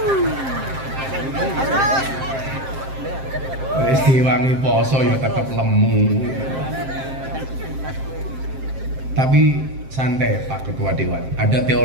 Wis diwangi poso ya tetap lemu. Tapi santai Pak Ketua Dewan. Ada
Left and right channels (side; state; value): left; late; 7.6 ms